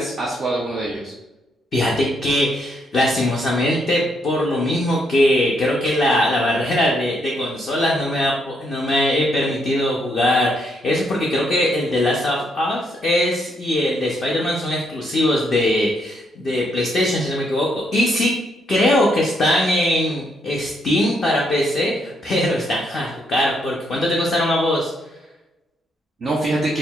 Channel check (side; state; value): both; normal; correlation 0.75